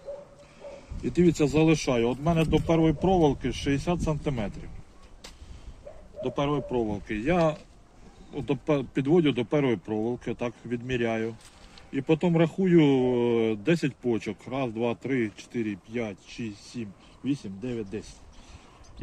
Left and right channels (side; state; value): both; identical; correlation 1.00